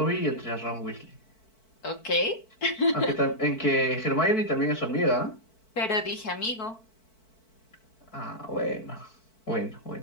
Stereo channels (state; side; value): late; right; 4.5 ms